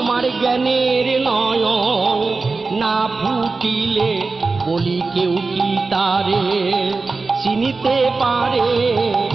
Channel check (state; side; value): quieter; left; 4.0 dB